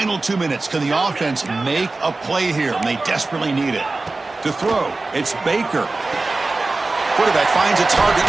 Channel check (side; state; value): left; quieter; 3.4 dB